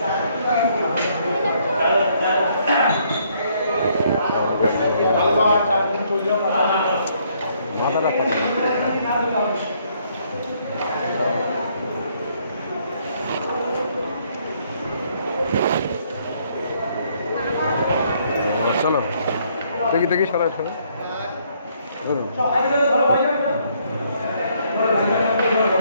মাথাটা চলো দেখি সবাই ধরুন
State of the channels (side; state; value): both; inverted; correlation -0.68